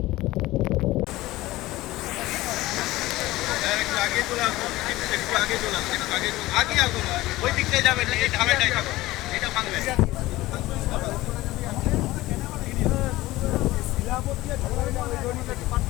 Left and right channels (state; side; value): quieter; right; 17.9 dB